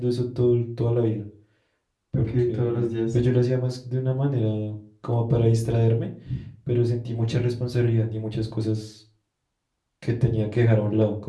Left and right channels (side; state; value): both; identical; correlation 1.00